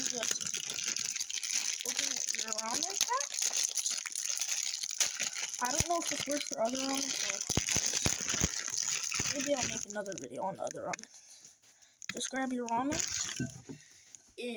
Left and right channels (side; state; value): both; identical; correlation 1.00